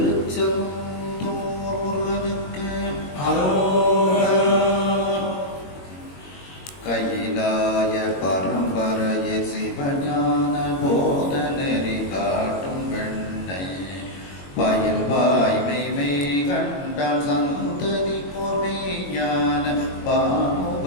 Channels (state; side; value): late; right; 22 ms